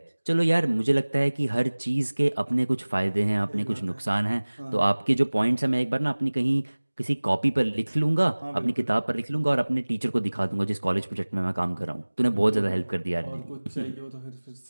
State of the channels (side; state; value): both; inverted; correlation -1.00